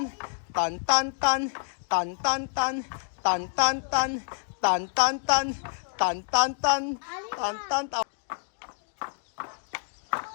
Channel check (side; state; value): right; silent; digital silence